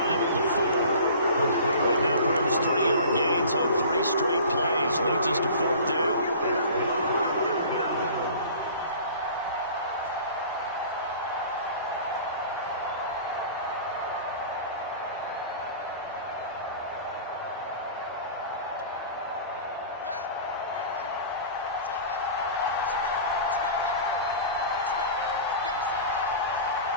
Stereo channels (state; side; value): inverted; both; correlation -0.42